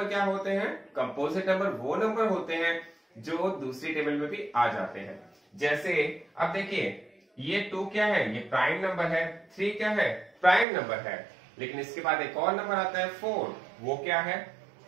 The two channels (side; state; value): left; drops out; at 10.7 s